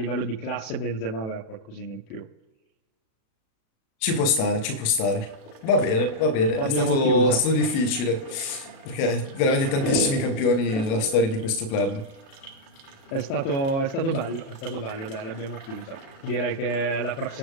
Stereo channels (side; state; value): right; late; 36 ms